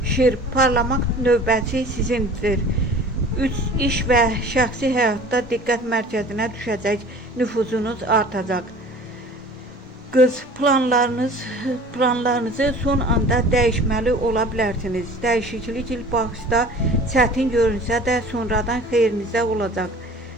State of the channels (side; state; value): both; normal; correlation 0.44